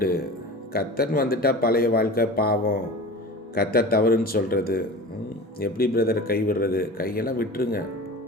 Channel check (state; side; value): normal; both; correlation 0.35